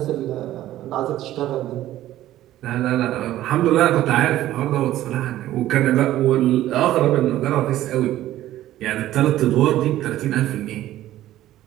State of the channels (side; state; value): left; quieter; 14.0 dB